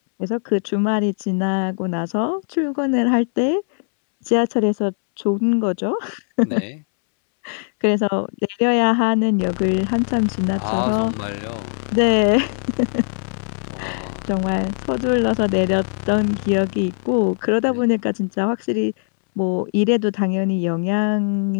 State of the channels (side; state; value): right; silent; 65 dB below the other